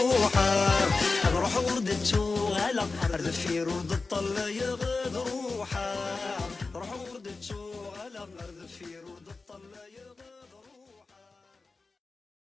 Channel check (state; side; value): quieter; right; 3.9 dB